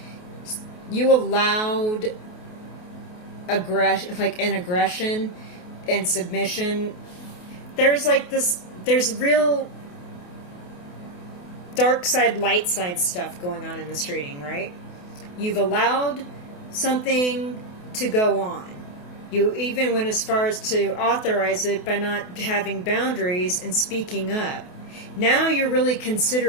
You allowed aggression and submission. There's real dark side, light side stuff going on in this reading, right? You've allowed something to go on. You even went as far as to authorize it by not having boundaries and speaking up. Now you're really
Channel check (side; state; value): right; late; 28 ms